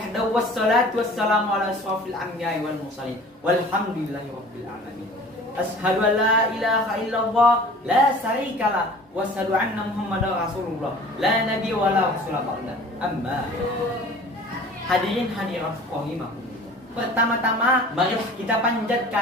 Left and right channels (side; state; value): both; normal; correlation 0.45